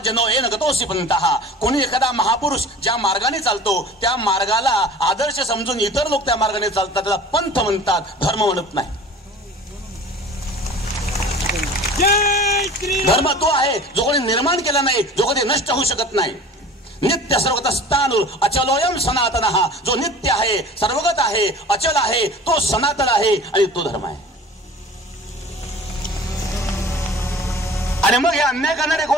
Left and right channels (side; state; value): both; normal; correlation 0.42